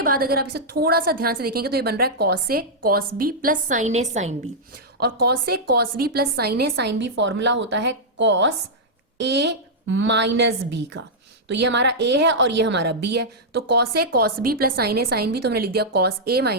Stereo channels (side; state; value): both; normal; correlation -0.08